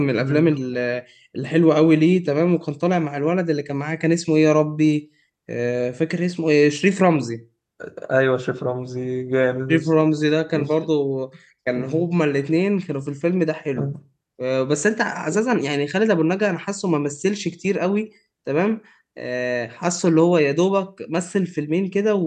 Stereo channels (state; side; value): identical; both; correlation 1.00